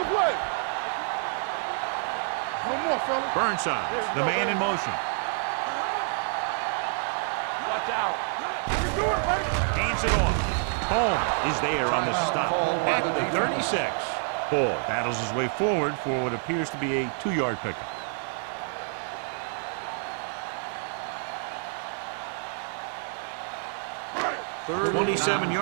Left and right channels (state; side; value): silent; left; 57 dB below the other